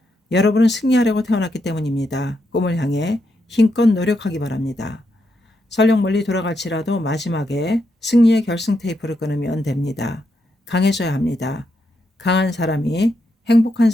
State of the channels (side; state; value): both; normal; correlation 0.81